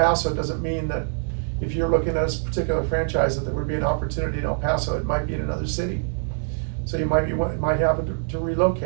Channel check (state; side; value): silent; left; digital silence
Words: doesn't mean that if you're looking at a particular franchise that there would be an opportunity in El Paso. It might be in another city, so you might have to